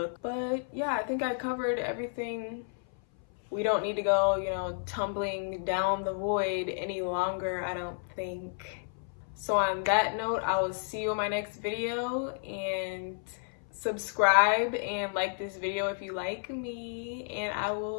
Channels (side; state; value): right; silent; 57 dB below the other